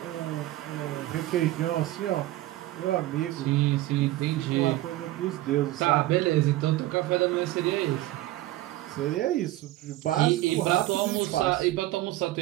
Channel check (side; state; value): left; quieter; 16.2 dB